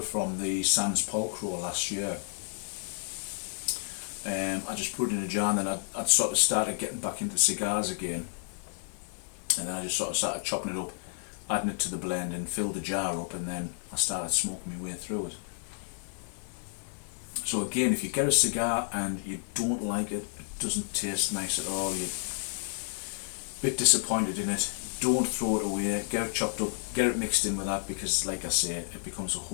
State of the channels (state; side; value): silent; right; digital silence